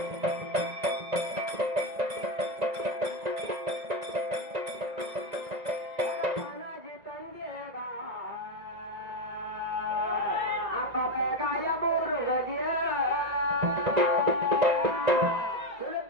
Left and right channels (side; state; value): left; late; 1.9 ms